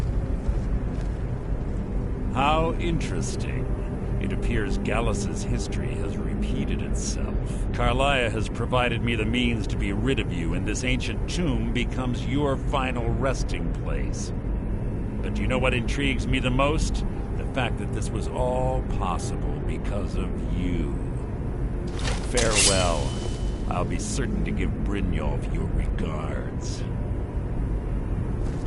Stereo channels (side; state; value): both; identical; correlation 1.00